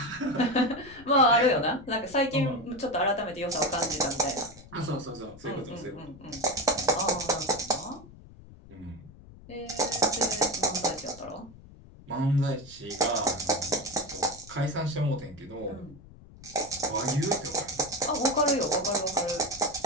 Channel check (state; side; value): noise; left; rumble, 20 dB below the sound